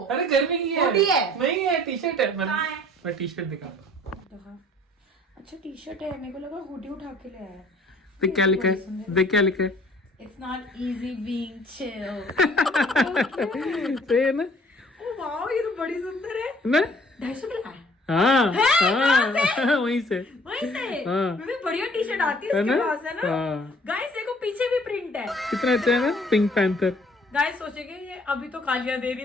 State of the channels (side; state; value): both; normal; correlation 0.56